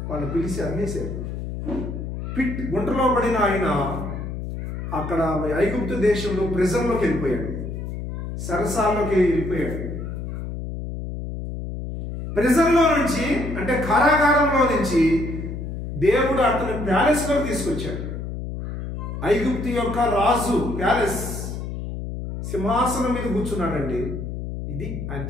వాళ్ళని పిలిచి అమ్మేశారు. పిట్, గుంటలో పడిన ఆయన అక్కడ ఐగుప్తు దేశంలో ప్రిజన్లోకి వెళ్ళిపోయాడు, సరసాల్లోకి వెళ్ళిపోయాడు. ప్రిజన్లో నుంచి, అంటే కారాగారంలో నుంచి దేవుడు అతని ప్యాలెస్లోకి తీసుకొచ్చాడు. ఐగుప్తు యొక్క రాజు ప్యాలెస్, సింహాసనం మీద కూర్చున్నాడండి. ఇది ఆయన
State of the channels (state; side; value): noise; left; hum, 6 dB below the sound